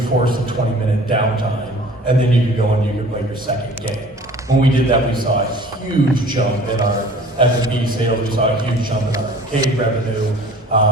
a 20-minute downtime, and then you can go and you can play your second game. When we did that, we saw a huge jump in our F&B sales. We saw a huge jump in our arcade revenue.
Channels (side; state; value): both; normal; correlation 0.48